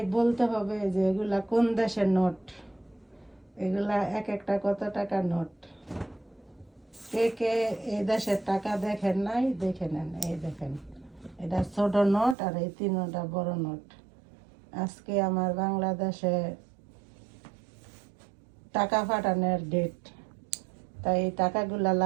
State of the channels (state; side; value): drops out; left; at 12.4 s